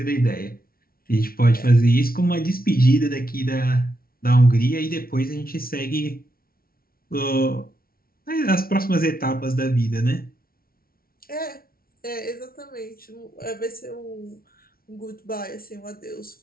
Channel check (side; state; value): right; late; 0.43 ms